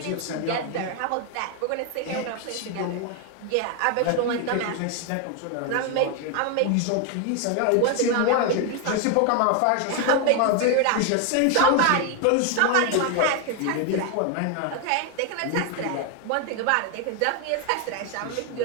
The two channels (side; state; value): both; different; correlation 0.01